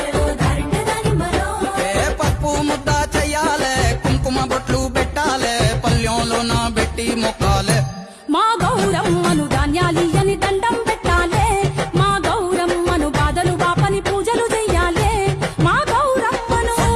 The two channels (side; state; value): both; identical; correlation 1.00